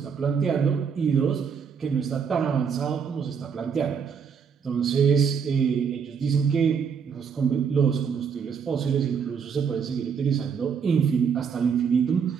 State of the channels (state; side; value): quieter; left; 6.6 dB